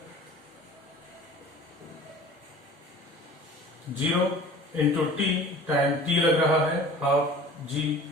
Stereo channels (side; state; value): both; normal; correlation 0.44